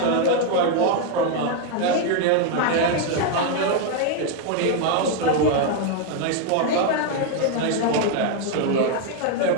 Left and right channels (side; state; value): both; different; correlation 0.01